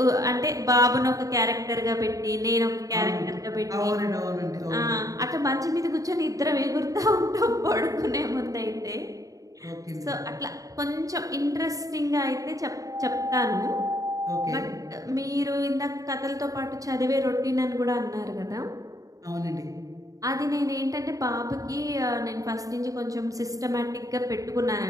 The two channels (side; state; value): left; late; 0.17 ms